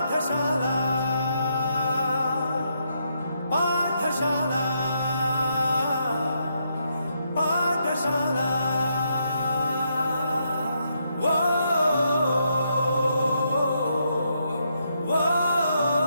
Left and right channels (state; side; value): inverted; both; correlation -0.78